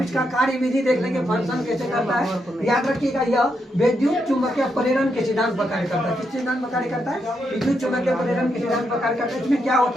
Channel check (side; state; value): both; normal; correlation 0.81